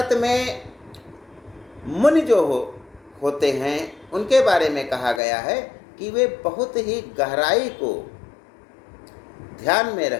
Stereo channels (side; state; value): right; drops out; at 5.2 s